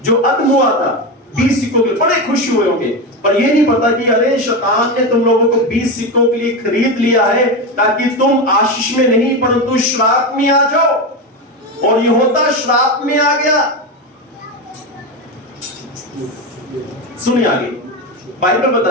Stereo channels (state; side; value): normal; both; correlation 0.16